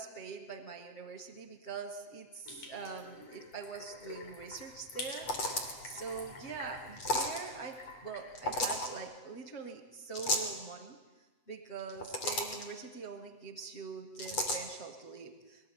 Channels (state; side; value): late; right; 7.8 ms